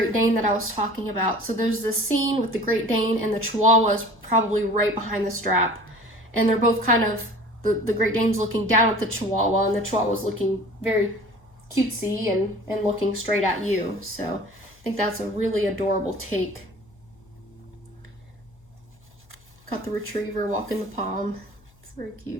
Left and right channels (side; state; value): left; noise; hum, 29 dB below the sound